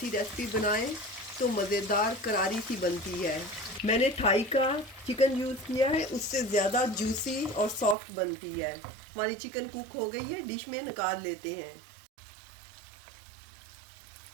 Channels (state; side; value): drops out; left; at 8.0 s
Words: रेसिपी बनाएं तो मज़ेदार करारी सी बनती है। मैंने थाई का चिकन यूज़ किया है, उससे ज़्यादा जूसी और सॉफ्ट बनती है। हमारी चिकन कुक हो गई है, डिश में निकाल लेते हैं।